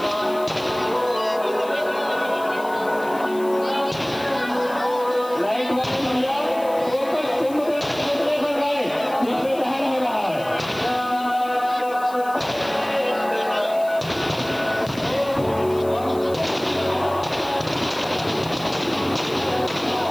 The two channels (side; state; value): left; noise; hiss, 20 dB below the sound